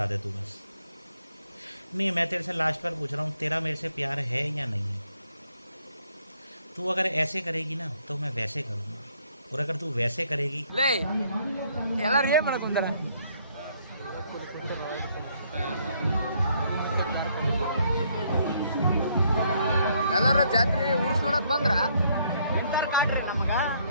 दे तू बस नहीं मैं तेरे से लास्ट बार पूछ रहा हूँ तेरा मेरे से प्यार है या नहीं है तू अगर ऐसे करेगी ना तो मैं वैसे करूँगा और अगर तू वैसे करेगी ಲೇ ಎಲ್ಲಾರು ಏನ್ ಮಾಡಕ್ ಕುಂತಾರ ಎಲ್ಲಾರ ಜಾತ್ರೆ ಊರ್ಸ್ ನೋಡಕ್ ಬಂದ್ರ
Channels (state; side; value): inverted; both; correlation -0.68